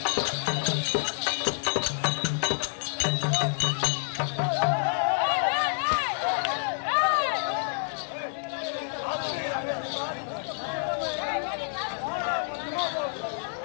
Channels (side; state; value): right; silent; digital silence